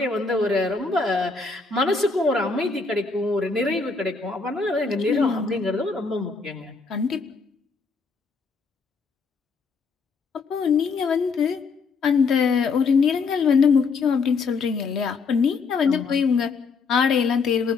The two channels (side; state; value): right; quieter; 4.7 dB